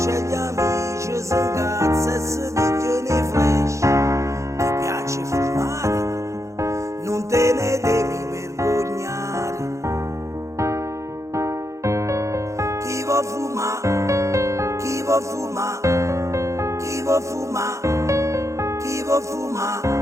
gli amici, si incazza e si pigliano i flash. Ti piace fumare? Non te ne devi vergognare. Chi vuol fumare? Chi vuol fumare? Chi vuol fumare? Chi vuol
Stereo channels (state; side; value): late; left; 0.15 ms